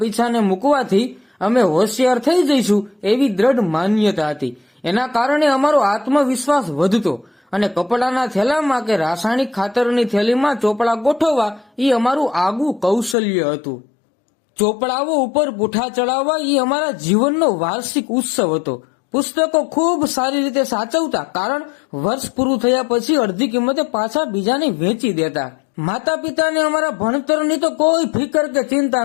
પીછાને મૂકવાથી અમે હોશિયાર થઈ જઈશું એવી દ્રઢ માન્યતા હતી. એના કારણે અમારો આત્મવિશ્વાસ વધતો અને કપડાના થેલામાં કે રાસાયણિક ખાતરની થેલીમાં ચોપડા ગોઠવવા એ અમારું આગવું કૌશલ્ય હતું. ચોપડાઓ ઉપર પૂઠા ચડાવવા એ અમારા જીવનનો વાર્ષિક ઉત્સવ હતો. પુસ્તકો ખૂબ સારી રીતે સાચવતા, કારણ વર્ષ પૂરું થયા પછી અડધી કિંમતે પાછા બીજાને વેચી દેતા. માતા પિતાને અમારા ભણતરની તો કોઈ ફિકર કે ચિંતા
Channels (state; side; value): drops out; right; at 13.2 s